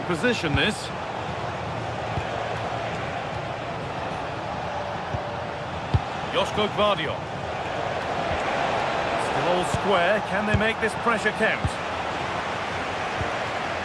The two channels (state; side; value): identical; both; correlation 1.00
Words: position, this. Joško Gvardiol. Still all square. Can they make this pressure count?